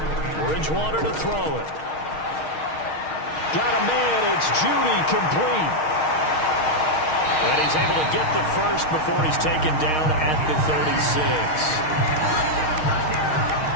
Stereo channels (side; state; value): right; late; 6.4 ms